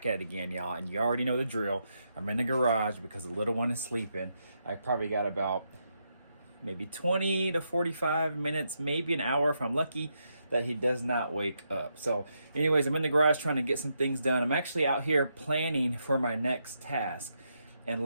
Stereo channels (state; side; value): inverted; both; correlation -0.81